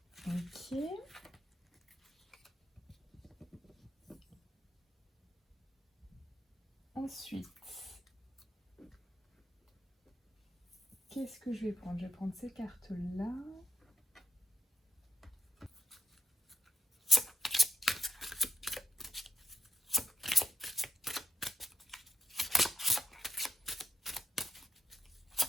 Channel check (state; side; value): normal; both; correlation 0.74